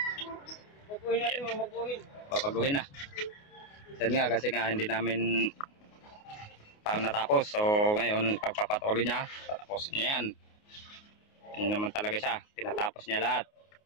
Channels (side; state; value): right; late; 29 ms